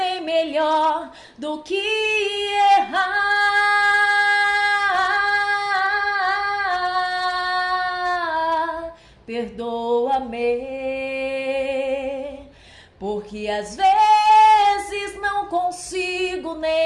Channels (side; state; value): both; identical; correlation 1.00